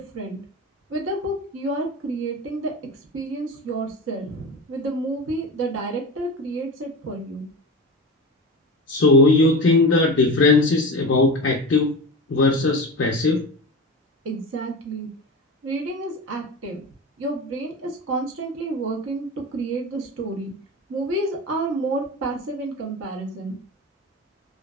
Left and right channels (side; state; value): both; normal; correlation 0.28